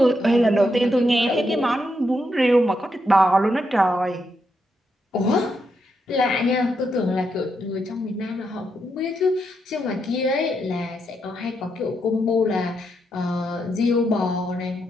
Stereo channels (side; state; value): both; normal; correlation 0.81